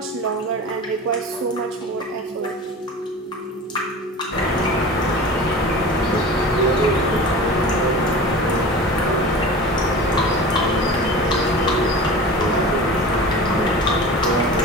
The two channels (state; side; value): normal; both; correlation 0.35